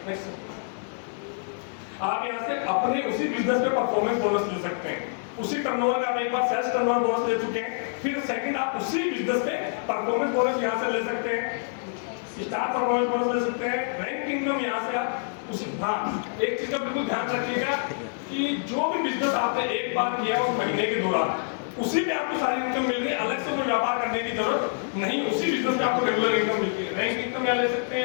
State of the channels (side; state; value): right; silent; digital silence